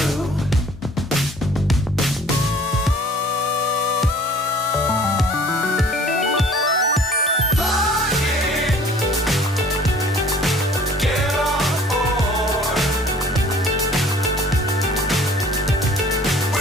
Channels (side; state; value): both; normal; correlation 0.51